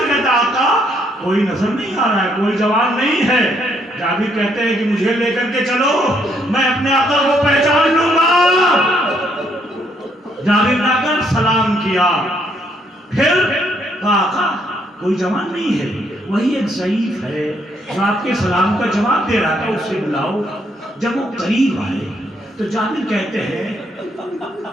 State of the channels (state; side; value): normal; both; correlation 0.71